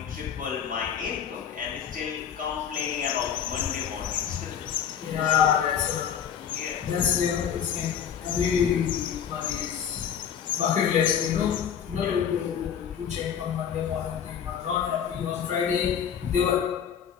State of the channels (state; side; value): quieter; right; 8.3 dB